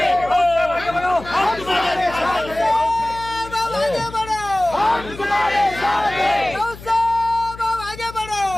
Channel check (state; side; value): noise; left; hum, 16 dB below the sound